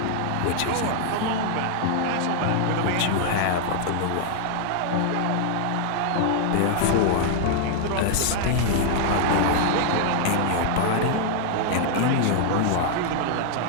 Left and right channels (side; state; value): both; different; correlation -0.01